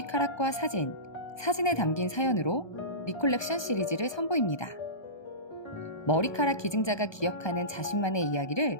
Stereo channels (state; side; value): late; right; 1.2 ms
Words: 사진에 담긴 사연으로 리콜렉션 시리즈를 선보입니다. 머리카락 기증자가 기억하는 자신만의 이야기를